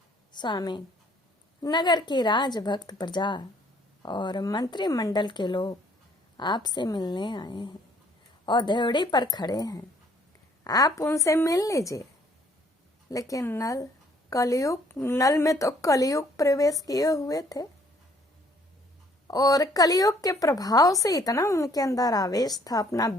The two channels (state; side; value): normal; both; correlation 0.62